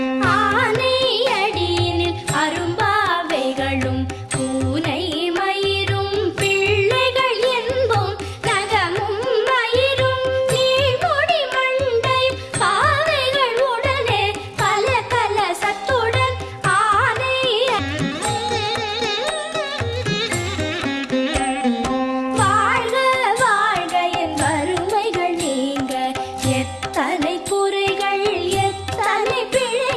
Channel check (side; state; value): both; identical; correlation 1.00